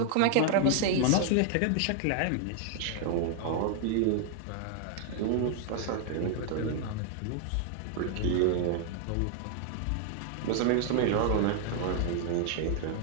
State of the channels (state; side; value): different; both; correlation 0.00